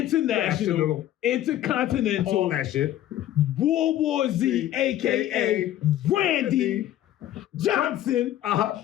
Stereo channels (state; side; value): quieter; right; 12.8 dB